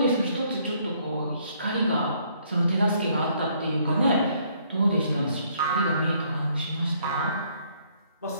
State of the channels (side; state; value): both; inverted; correlation -0.66